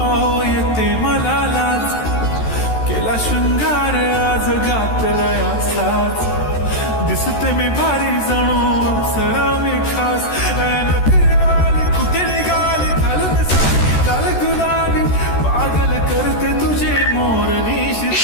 आओ येते मला लाज, केला शृंगार आज घातलाय असाच, दिसते मी भारी जणू अप्सरा मी खास, नखरेवाली कुठे निघाली घालून साडी लाल गुलाबी, पागल करते तुझे मोरनी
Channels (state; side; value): late; right; 13 ms